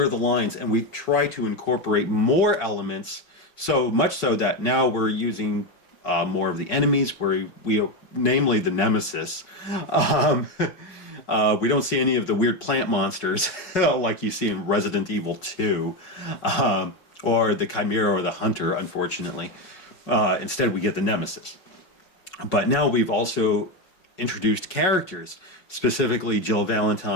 the lines and we try to incorporate more elements, so much so that now we're using more of the enemies, where we namely the Nemesis. We don't see any of the weird plant monsters like you see in Resident Evil 2, or the Chimera or the Hunter, unfortunately. Instead, we get the Nemesis. But now we've also introduced characters, specifically Jill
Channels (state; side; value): late; right; 5.4 ms